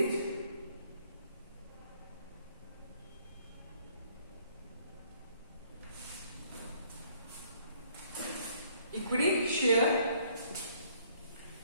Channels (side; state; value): both; inverted; correlation -0.63